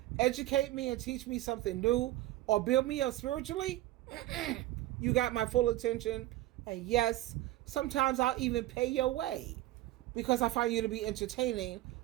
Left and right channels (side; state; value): left; quieter; 16.0 dB